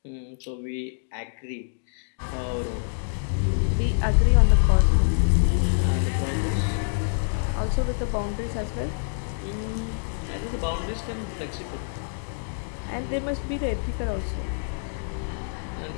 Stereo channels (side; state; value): right; silent; digital silence